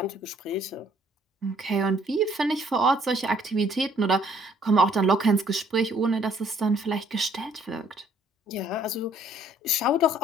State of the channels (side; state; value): both; normal; correlation 0.61